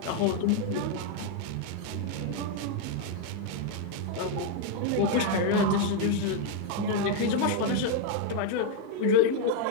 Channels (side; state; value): both; different; correlation 0.01